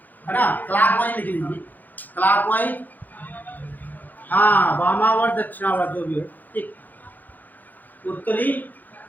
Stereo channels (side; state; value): right; late; 0.085 ms